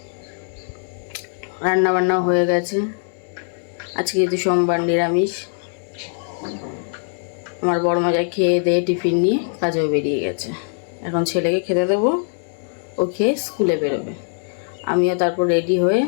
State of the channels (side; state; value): right; silent; 60 dB below the other